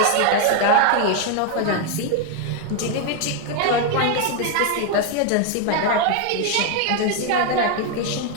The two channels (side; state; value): both; different; correlation 0.01